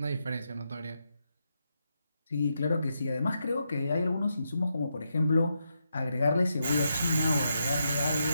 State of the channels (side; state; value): both; inverted; correlation -0.83